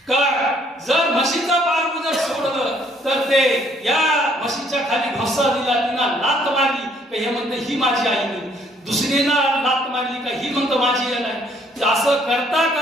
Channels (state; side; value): normal; both; correlation 0.65